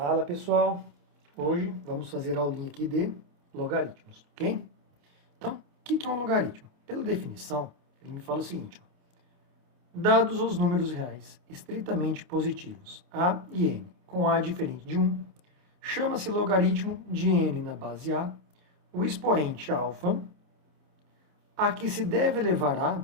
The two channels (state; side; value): late; left; 28 ms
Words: pessoal, hoje vamos fazer a aulinha aqui de logaritmos, ok? Então, o que é um logaritmo? Pela definição, ele me fala o seguinte, ó, dados os números reais estritamente positivos, a e n, com a diferente de 1, chama-se logaritmo de n na base a, o expoente alfa, a que se deve elevar